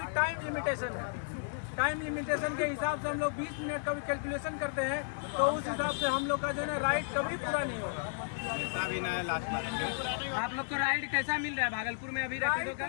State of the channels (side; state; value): right; silent; 55 dB below the other